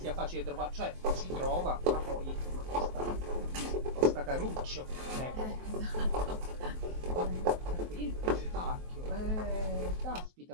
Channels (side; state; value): left; late; 23 ms